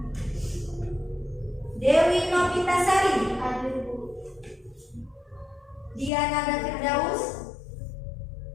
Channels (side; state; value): right; drops out; at 6.1 s